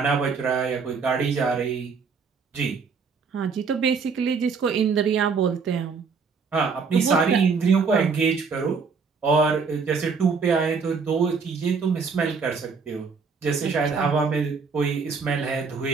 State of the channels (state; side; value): quieter; left; 5.2 dB